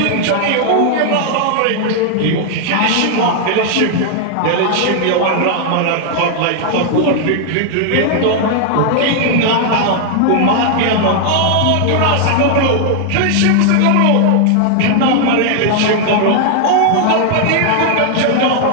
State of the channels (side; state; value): both; different; correlation 0.00